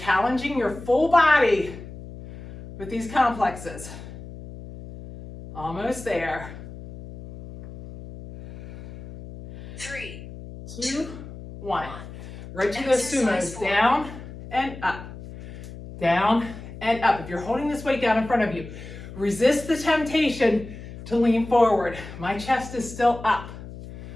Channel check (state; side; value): noise; left; hum, 13 dB below the sound